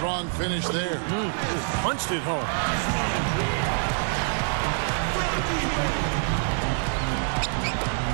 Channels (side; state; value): left; silent; 61 dB below the other